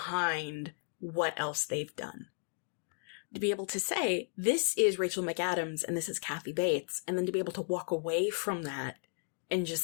what else they've done? To be able to say, this is Rachel McAdams and this is Kathy Bates, and then to be able to walk away from that and just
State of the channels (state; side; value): silent; right; 55 dB below the other